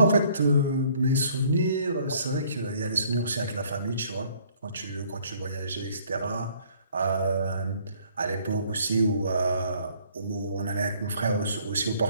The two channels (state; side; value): inverted; both; correlation -0.60